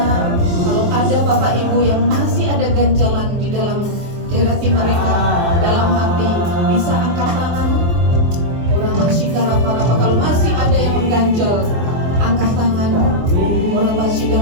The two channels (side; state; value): left; late; 24 ms